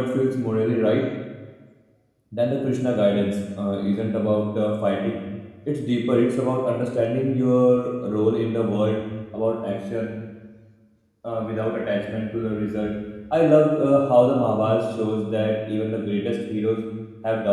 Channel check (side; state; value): both; identical; correlation 1.00